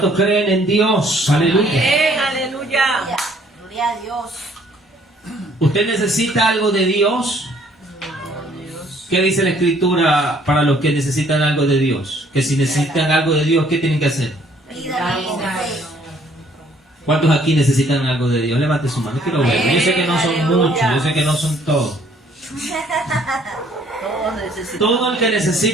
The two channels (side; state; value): both; normal; correlation 0.62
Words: creen en Dios? Aleluya. Amén. Aleluya. Gloria a Dios. ¿Usted necesita algo de Dios? ¿Qué dice la Escritura para los que necesitan algo de Dios? Que si necesitan algo de Dios, ¿qué tienen que hacer? Pídalo con fe. ¿Cuántos aquí necesitan algo de Dios? Levante su mano, quiero verlo. Yo sé que no son muchos, yo sé que no son todos. Todos necesitamos. Todo el que